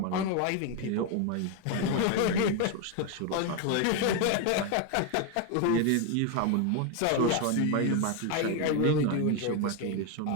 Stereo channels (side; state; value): both; different; correlation 0.02